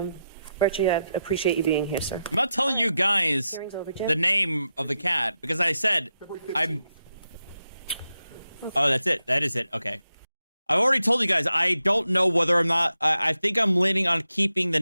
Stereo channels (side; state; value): both; inverted; correlation -0.87